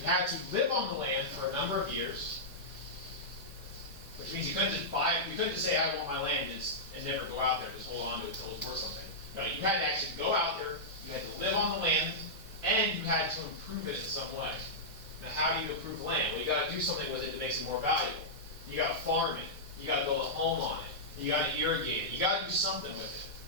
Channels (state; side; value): normal; both; correlation -0.11